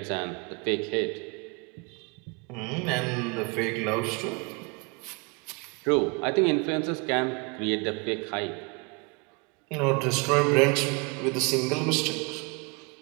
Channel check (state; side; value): quieter; left; 30.8 dB